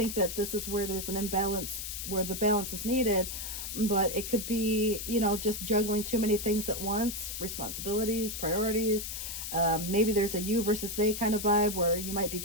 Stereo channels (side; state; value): left; noise; hiss, 6 dB below the sound